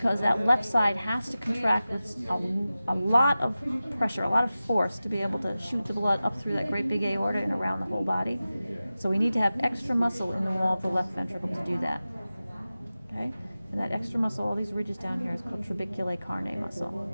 that left side has to contract with a lot of pressure, a lot of force to be able to shoot the blood up through that great big aorta and around the whole body. So we need to have extra muscle in the wall of the left ventricle to do that. Okay? And that extra muscle, all these ridges down here, is called trabeculae carnae muscle.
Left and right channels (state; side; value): inverted; both; correlation -0.95